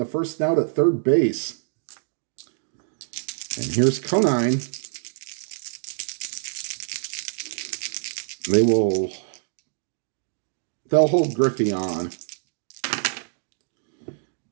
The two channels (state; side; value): silent; left; digital silence